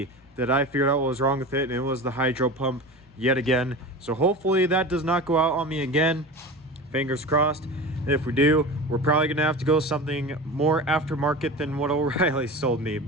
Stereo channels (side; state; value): both; normal; correlation 0.31